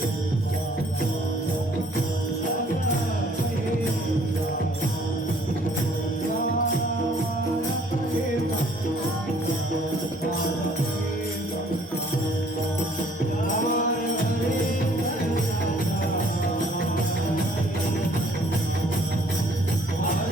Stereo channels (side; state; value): both; normal; correlation 0.60